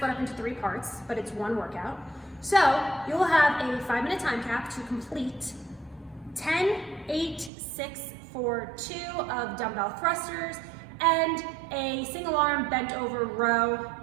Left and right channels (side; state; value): left; drops out; at 7.5 s